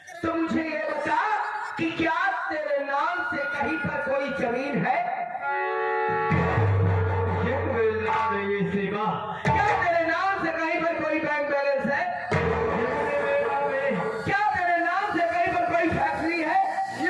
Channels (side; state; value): both; identical; correlation 1.00